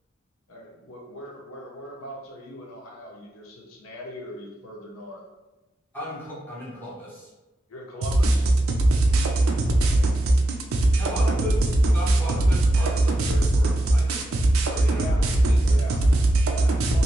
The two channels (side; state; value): both; normal; correlation 0.89